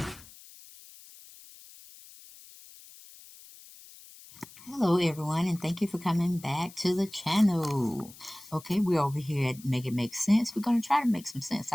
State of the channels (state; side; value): noise; left; hiss, 20 dB below the sound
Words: Hello everyone, and thank you for coming back to the channel. Okay, we're over here at Make It Make Sense. We're going to try to make some sense